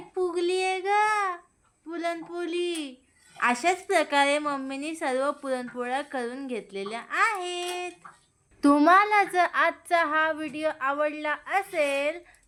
फुगली आहे ग पुरणपोळी. अशाच प्रकारे मम्मीने सर्व पुरणपोळ्या करून घेतलेल्या आहेत. तुम्हाला जर आजचा हा व्हिडिओ आवडला असेल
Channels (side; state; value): both; identical; correlation 1.00